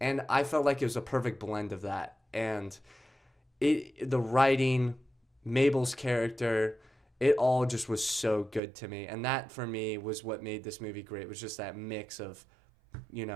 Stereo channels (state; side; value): drops out; left; at 8.6 s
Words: I felt like it was a perfect blend of that. And the writing, Mabel's character, it all just was so good to me. And that, for me, was what made this movie great, was just that mix of,